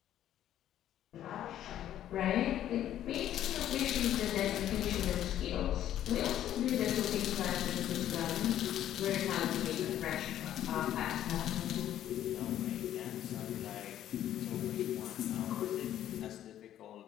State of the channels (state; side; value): quieter; right; 11.7 dB